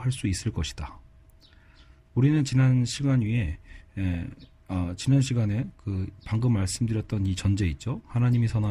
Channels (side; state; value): both; identical; correlation 1.00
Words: 수 있을 것이다. 우리는 지난 시간에 방금 말씀드렸던 이 전제 있죠. 하나님이